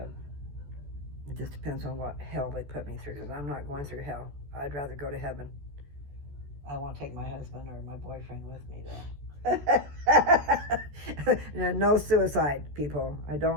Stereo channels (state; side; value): late; left; 14 ms